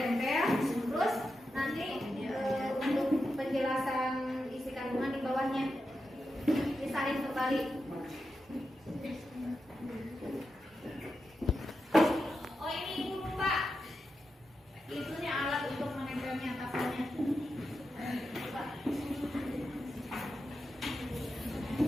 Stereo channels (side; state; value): both; normal; correlation 0.89